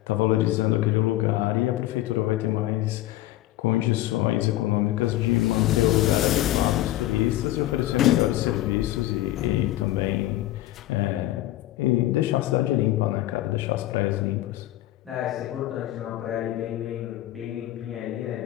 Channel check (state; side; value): quieter; right; 15.5 dB